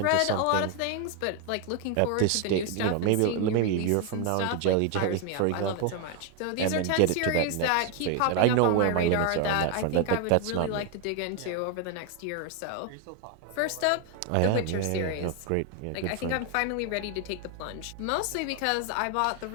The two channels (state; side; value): different; both; correlation 0.01